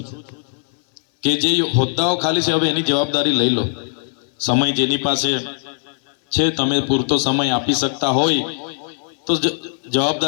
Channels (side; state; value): right; silent; digital silence